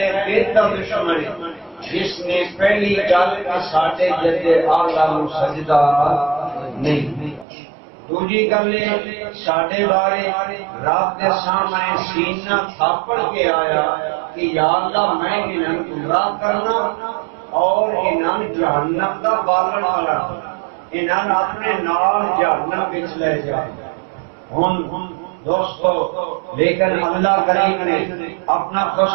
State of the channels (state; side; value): drops out; left; at 7.5 s